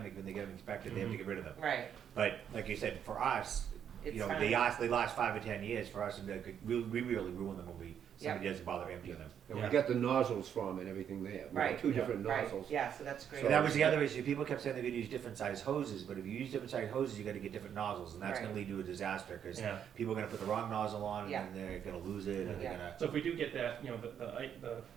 when they get them inspected, they have to get rid of them. Right, But like you said, for us, It's you know, fine. they last 5 or 10 years. For us, we really ruin them when somebody doesn't bother emptying them. And we Yeah. got the nozzles from and everything there. We got Right. 2 different right, nozzles. yeah, so that's great. So that was the other issue. People kept saying they're going to use different size hoses, but if you use different size hoses, you got to get different nozzles, and that's Right. going to lead to a disaster because Yeah. people are going to put the wrong nozzle on, Yeah. and then they're going to lose it, and they're Yeah. going to. So if we do get that, you know, the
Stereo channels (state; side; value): quieter; left; 8.7 dB